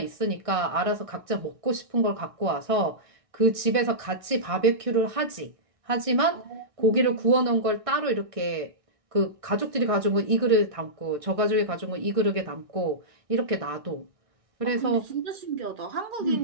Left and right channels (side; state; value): left; late; 1.6 ms